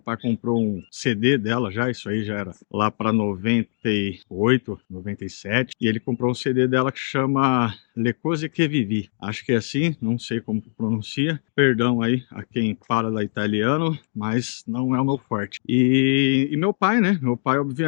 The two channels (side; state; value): right; silent; digital silence